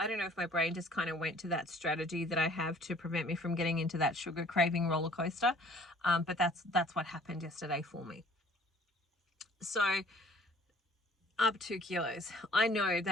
don't know if my brain just kind of went to that strategy that I have to prevent me from getting into that sugar craving roller coaster. But that's what happened yesterday for me. So up 2 kilos. I know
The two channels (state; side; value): normal; both; correlation 0.55